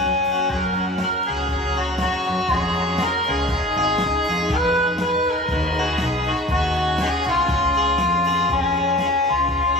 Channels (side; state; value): both; normal; correlation 0.44